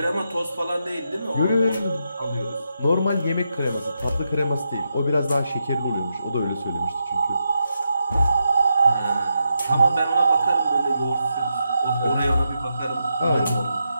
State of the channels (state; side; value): inverted; both; correlation -0.85